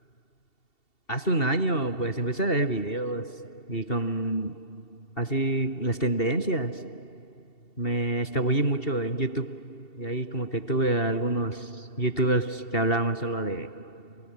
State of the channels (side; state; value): right; late; 2.7 ms